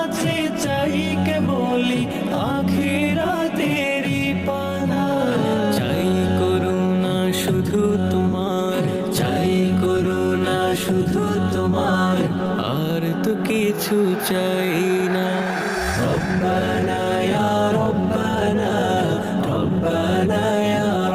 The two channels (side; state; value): both; identical; correlation 1.00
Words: চাই কেবল আখিরাতের পানা। চাই করুণা শুধু তোমার, চাই করুণা শুধু তোমার, আর তো কিছু চাই না। রব্বানা ইয়া রব্বানা, রব্বানা ইয়া